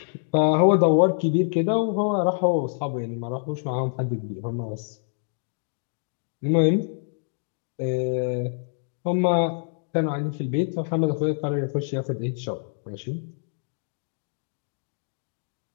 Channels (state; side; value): silent; right; digital silence